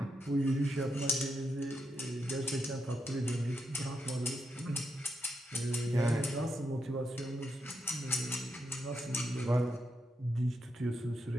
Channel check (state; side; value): normal; both; correlation 0.83